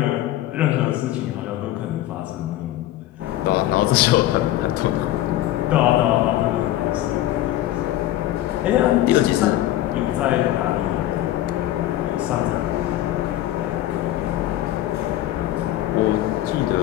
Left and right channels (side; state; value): right; quieter; 14.2 dB